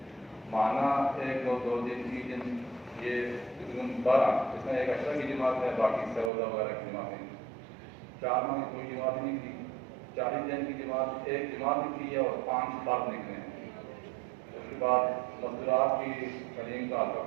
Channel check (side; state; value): left; drops out; at 6.3 s